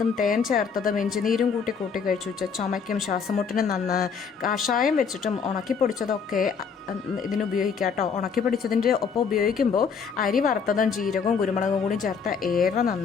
തേൻ ചേർത്തതും ഇഞ്ചിനീരും കൂട്ടി കഴിച്ചു വെച്ചാൽ ചുമയ്ക്കും ശ്വാസമുട്ടിനും നന്ന്. കാഷായം വെച്ചിട്ടും പൊടിച്ചതൊക്കെ ഇതിന് ഉപയോഗിക്കാം കേട്ടോ. ഉണക്കി പൊടിച്ചതിൻ്റെ ഒപ്പം ഉപയോഗിക്കുമ്പോൾ അരി വറുത്തതും ജീരകവും കുരുമുളകും കൂടി ചേർത്ത് ഏറെ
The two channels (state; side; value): quieter; right; 6.1 dB